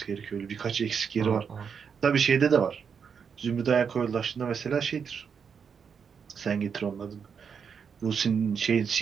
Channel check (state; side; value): quieter; left; 6.6 dB